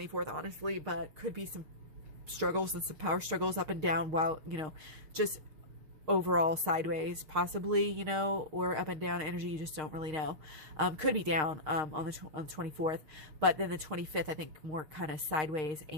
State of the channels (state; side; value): late; left; 6.5 ms